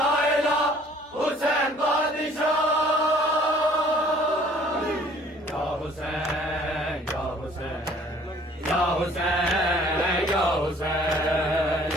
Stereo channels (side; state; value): both; normal; correlation 0.56